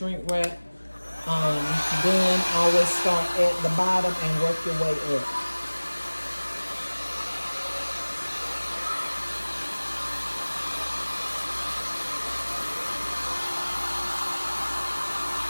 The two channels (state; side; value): inverted; both; correlation -1.00